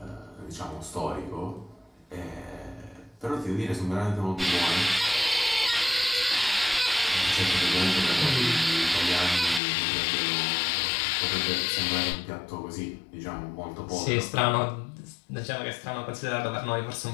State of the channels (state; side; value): drops out; right; at 9.6 s